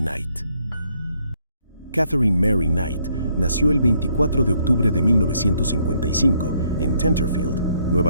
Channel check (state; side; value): inverted; both; correlation -0.70